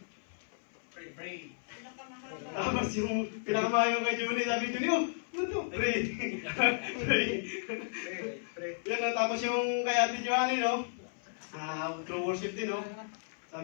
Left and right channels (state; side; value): silent; right; 55 dB below the other